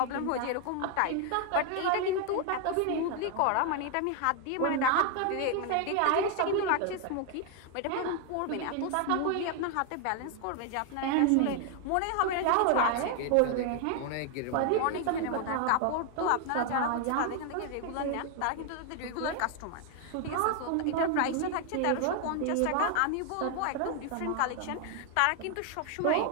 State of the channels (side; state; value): both; different; correlation 0.01